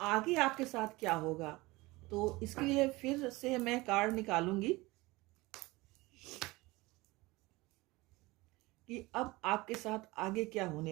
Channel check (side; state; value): left; quieter; 21.5 dB